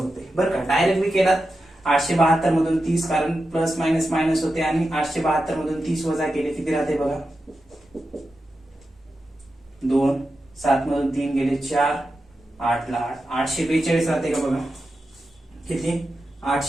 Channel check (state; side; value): normal; both; correlation 0.90